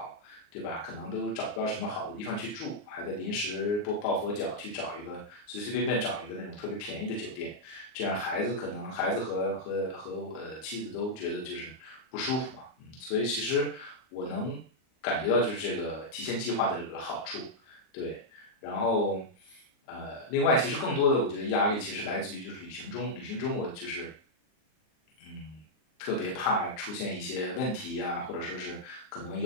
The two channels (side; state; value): right; late; 39 ms